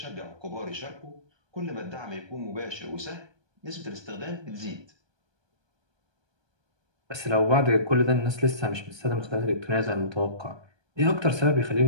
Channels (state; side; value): late; left; 1.2 ms